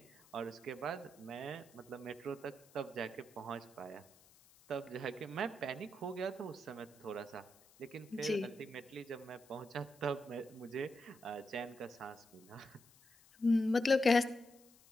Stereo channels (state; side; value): noise; left; hiss, 26 dB below the sound